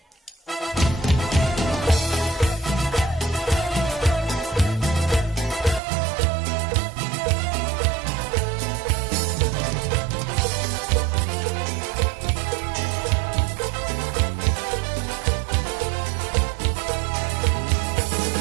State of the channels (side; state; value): left; drops out; at 5.8 s